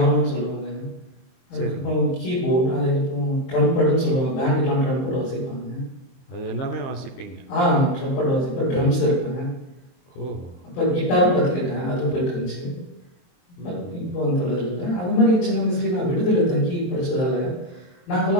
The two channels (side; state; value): right; late; 23 ms